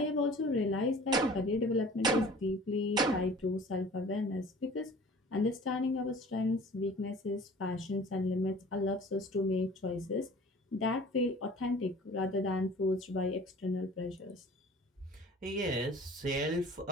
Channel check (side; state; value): both; normal; correlation 0.46